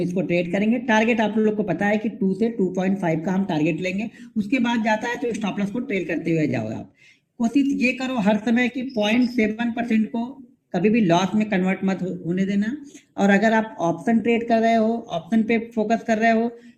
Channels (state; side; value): identical; both; correlation 1.00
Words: ट्रेड करेंगे। टारगेट आप लोग को पता है कि 2 से 2.5 का हम टारगेट लेंगे, उसके बाद जाता है तो स्टॉप लॉस को ट्रेड करते हुए जाओ आप। कोशिश ये करो हर समय कि 0.7% को कभी भी लॉस में कन्वर्ट मत होने देना। और अगर आप ऑप्शन ट्रेड कर रहे हो, ऑप्शन पे फोकस कर रहे हो,